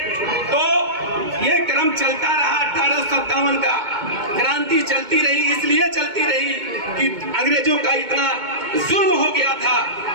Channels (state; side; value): late; left; 2.2 ms